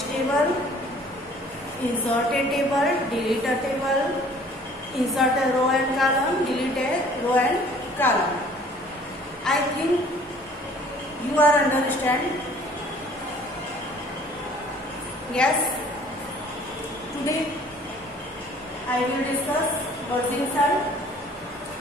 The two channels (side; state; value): both; normal; correlation 0.53